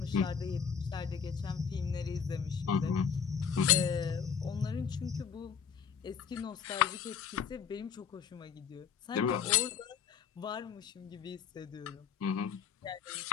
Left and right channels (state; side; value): quieter; right; 7.0 dB